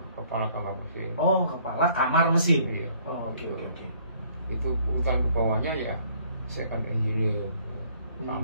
kamar mesin. Oh, kepala kamar mesin. Iya. Oh, oke. Itu urutan ke bawahnya ya second engineer,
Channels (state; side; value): inverted; both; correlation -0.61